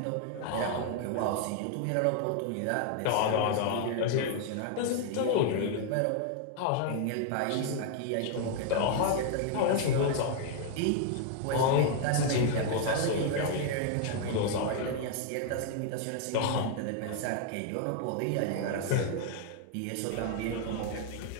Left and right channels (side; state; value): both; different; correlation 0.00